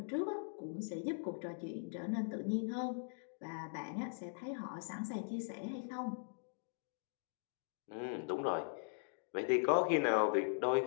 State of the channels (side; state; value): right; silent; digital silence